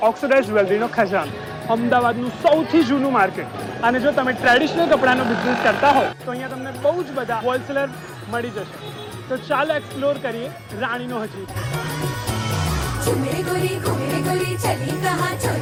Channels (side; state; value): both; identical; correlation 1.00